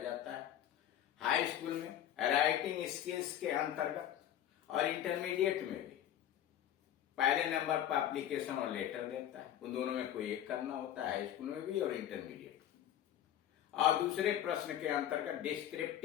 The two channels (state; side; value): quieter; right; 11.1 dB